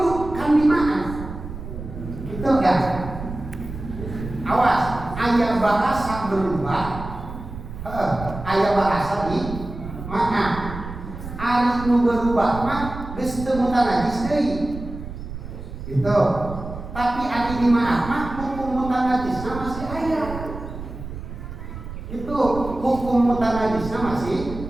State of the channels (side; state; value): right; noise; rumble, 10 dB below the sound